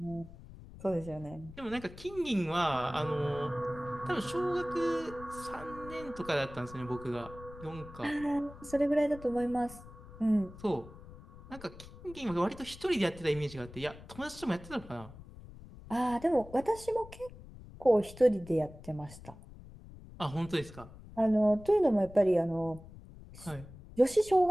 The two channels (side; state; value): left; noise; rumble, 17 dB below the sound